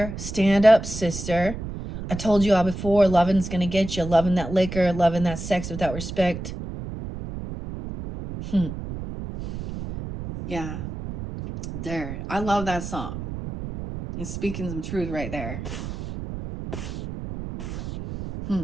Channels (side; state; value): right; noise; rumble, 8 dB below the sound